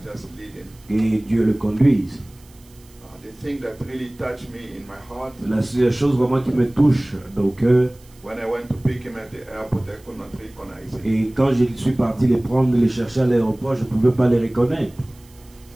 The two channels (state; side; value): noise; right; hiss, 28 dB below the sound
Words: just lead him. et Dieu le conduise. The thing that really touched me in my heart, La seule chose vraiment qui me touche au cœur, when I went to pick him at the airport, I could not recognize him. et quand je suis parti les prendre, les chercher à l'aéroport, je ne pouvais pas les reconnaître.